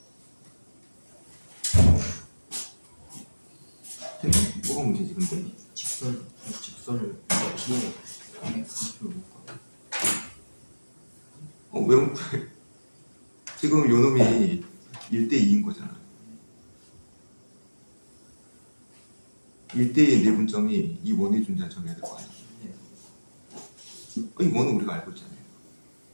뭐가 문제지 근데? 직선을 P에 X표로 묶어. 왜 지금 요 놈이 1대2인 거잖아. 1대2의 내분점이 이 원에 존재하는 점이 될 거 아니야. 이 원은 우리가 알고 있잖아요.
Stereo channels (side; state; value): both; inverted; correlation -1.00